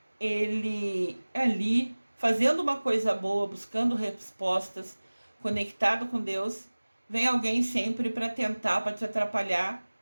ele ali, fazendo uma coisa boa, buscando respostas, conectado com Deus, vem alguém sempre para tentar, para te atrapalhar,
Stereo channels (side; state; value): both; inverted; correlation -1.00